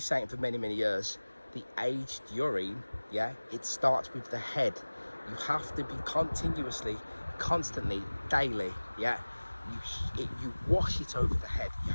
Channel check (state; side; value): inverted; both; correlation -1.00